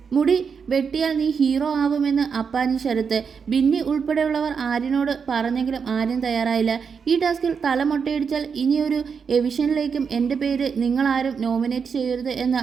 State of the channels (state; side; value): quieter; left; 6.1 dB